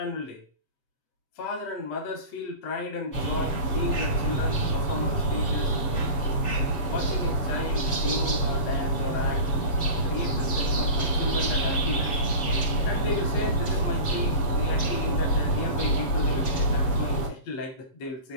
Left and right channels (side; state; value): right; late; 7.3 ms